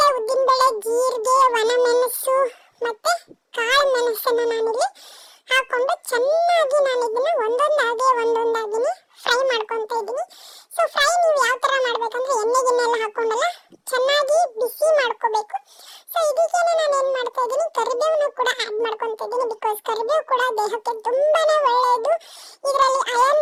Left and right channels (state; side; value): identical; both; correlation 1.00